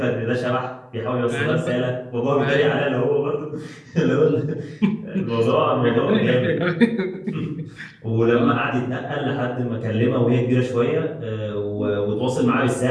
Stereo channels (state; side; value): identical; both; correlation 1.00